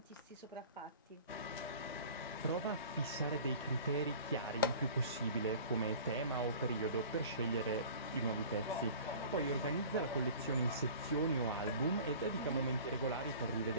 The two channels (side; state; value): both; inverted; correlation -0.43